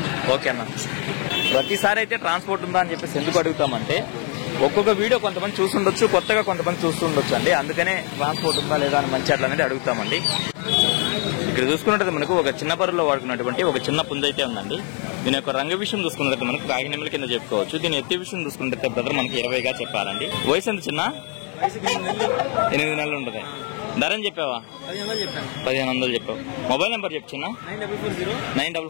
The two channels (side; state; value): right; quieter; 37.8 dB